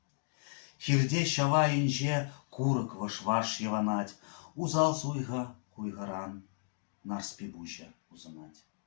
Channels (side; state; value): right; silent; digital silence